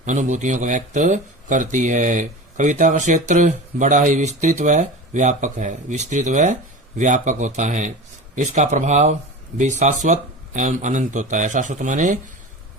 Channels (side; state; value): both; normal; correlation 0.31